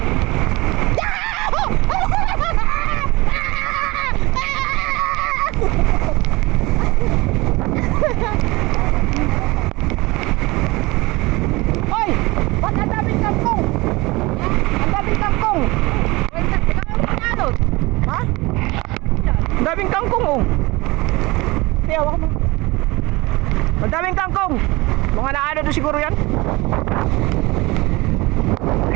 Hoy! Ba't ang daming kangkong? Ang daming kangkong! Ha? Ang daming kangkong oh! Hindi, hawak mo. Ang daming kangkong! Mga naano doon siguro yan?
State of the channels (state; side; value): quieter; left; 22.5 dB